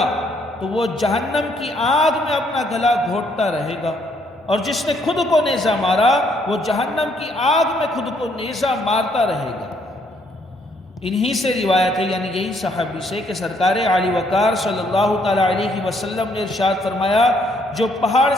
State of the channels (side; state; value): both; normal; correlation 0.69